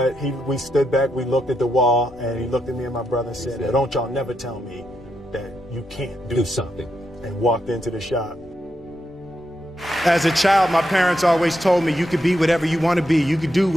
we stood back, we looked at the wall, and he looked at me and my brother and said, "Don't y'all never tell me that you can't do something," and walked into the shop. As a child, my parents always told me you could be whatever you want to be. You could do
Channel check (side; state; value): both; normal; correlation 0.82